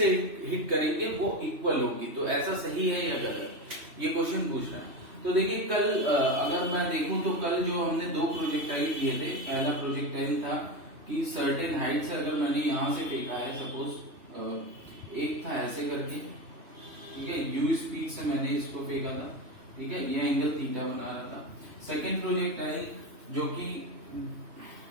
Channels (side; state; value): left; late; 3.0 ms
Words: हिट करेंगे वो इक्वल होगी। तो ऐसा सही है या गलत, ये क्वेश्चन पूछ रहा है। तो देखिए कल अगर मैं देखूं तो कल जो हमने दो प्रोजेक्टाइल किए थे, पहला प्रोजेक्टाइल था कि सर्टेन हाइट से अगर मैंने यहां से फेंका है, सपोज एक था ऐसे करके, ठीक है, u स्पीड से मैंने इसको फेंका था, ठीक है, ये एंगल थीटा बना रहा था। सेकेंड प्रोजेक्टाइल जो कि